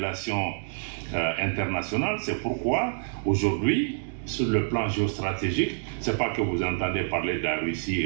internationales. C'est pourquoi aujourd'hui, sur le plan géostratégique, ce n'est pas que vous entendez parler de la Russie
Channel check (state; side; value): silent; left; digital silence